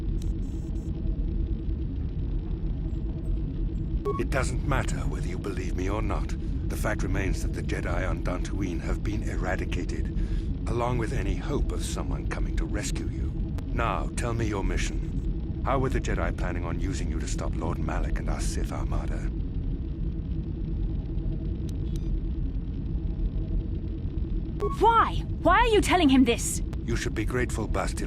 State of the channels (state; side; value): identical; both; correlation 1.00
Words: It doesn't matter whether you believe me or not. The fact remains that the Jedi on Dantooine have been eradicated, along with any hope of someone coming to rescue you. Now, tell me your mission. How were the Jedi planning on using you to stop Lord Malak and our Sith Armada? Why? Why are you telling him this? You should be grateful,